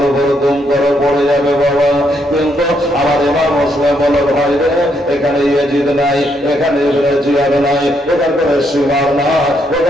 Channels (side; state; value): both; normal; correlation 0.75